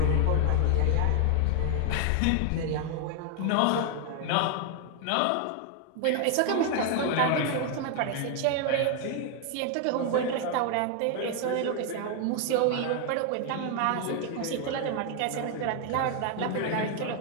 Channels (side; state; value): both; different; correlation 0.00